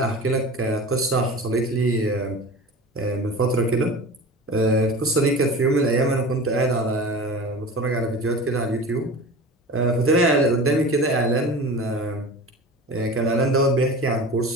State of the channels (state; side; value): normal; both; correlation 0.34